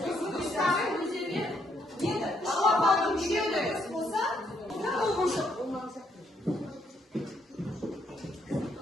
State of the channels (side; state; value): both; normal; correlation 0.73